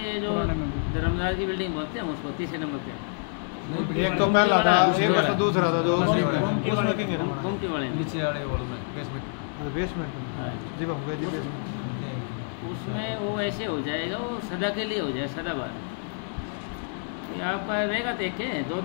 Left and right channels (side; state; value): right; silent; 60 dB below the other